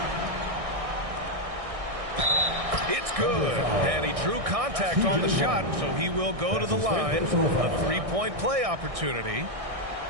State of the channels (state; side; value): late; left; 1.6 ms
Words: It's good. And he drew contact on the shot, so he will go to the line. A three-point play opportunity.